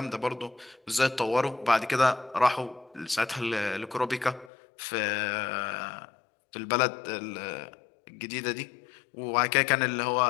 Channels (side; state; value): right; drops out; at 4.5 s